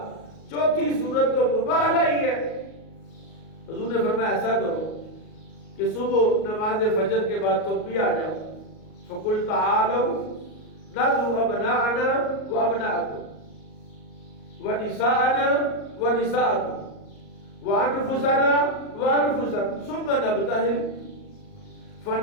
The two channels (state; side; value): late; right; 38 ms